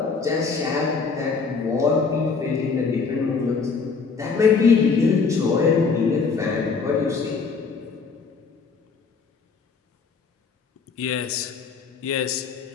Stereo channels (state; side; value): quieter; right; 5.0 dB